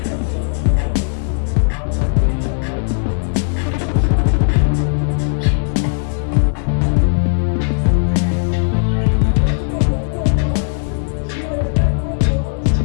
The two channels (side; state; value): right; silent; 59 dB below the other